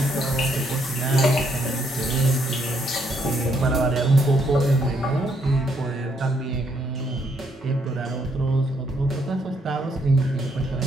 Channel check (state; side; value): normal; both; correlation 0.72